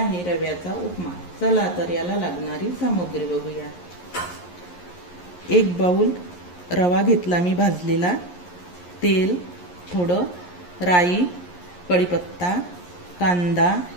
रव्याचा उपमा। चला तर याला लागणारी सामग्री बघूया। एक बाउल रवा घेतला मी भाजलेला, तेल, थोडं राई, कढीपत्ता, कांदा,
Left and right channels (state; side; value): late; right; 11 ms